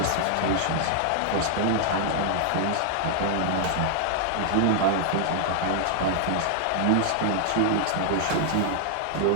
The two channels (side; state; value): both; different; correlation 0.00